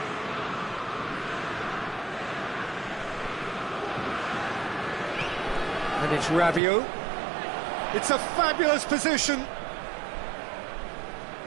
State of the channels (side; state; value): left; drops out; at 6.6 s